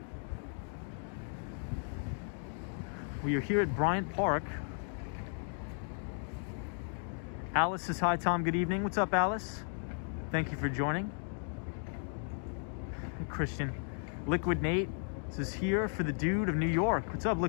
We are here at Bryant Park. Alice says, hi, Tom. Good evening. What's up, Alice? Thank you for joining. Christian. Liquid Nate says, here for the dude of New York. What's up,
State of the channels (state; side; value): silent; right; 54 dB below the other